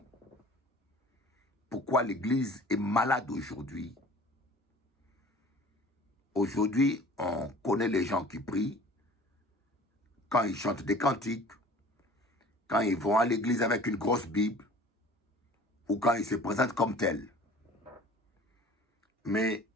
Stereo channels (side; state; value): both; normal; correlation 0.46